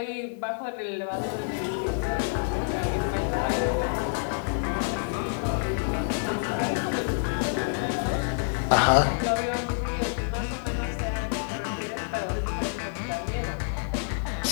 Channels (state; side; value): silent; right; digital silence